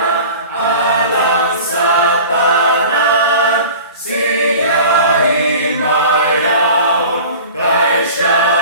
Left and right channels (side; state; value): both; inverted; correlation -0.40